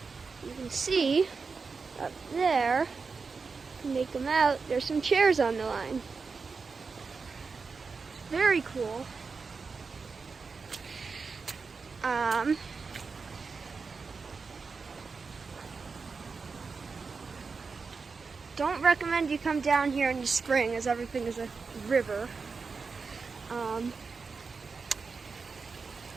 You can see up there, make them out, there's some chairs on the line. Very cool. Don't recommend you come down here in the spring as everything is a river.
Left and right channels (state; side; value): quieter; left; 4.8 dB